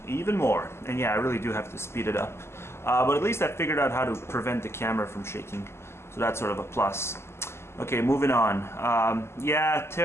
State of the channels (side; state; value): right; late; 0.12 ms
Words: Even more. And yeah, I really do have to speed it up. But at least I figured out how to prevent the camera from shaking. So that's sort of a plus. Okay, moving on. Yeah,